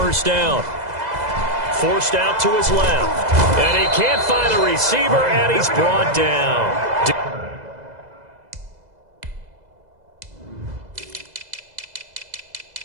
down. Forced out to his left. And he can't find a receiver, and he's brought down.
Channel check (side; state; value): left; late; 2.0 ms